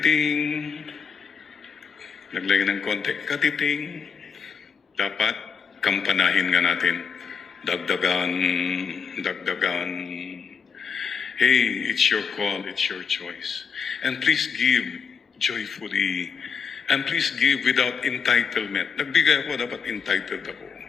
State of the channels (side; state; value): right; quieter; 6.1 dB